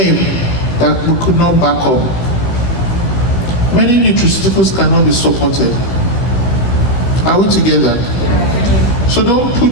that we could not back up. Many nutraceuticals cannot be supported. Are we together? So don't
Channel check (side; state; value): right; late; 16 ms